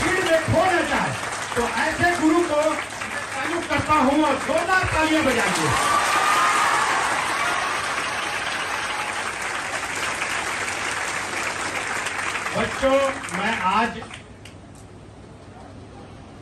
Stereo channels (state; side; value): identical; both; correlation 1.00